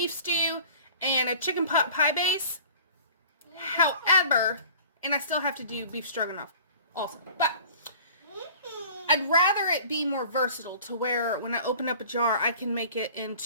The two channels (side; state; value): both; inverted; correlation -0.46